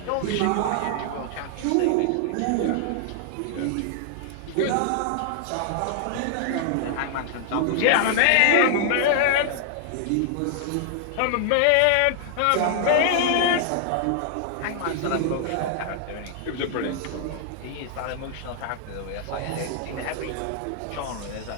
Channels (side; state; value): both; different; correlation -0.01